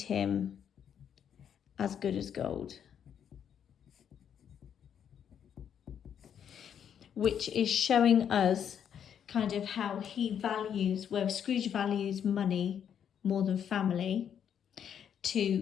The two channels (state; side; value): quieter; right; 8.6 dB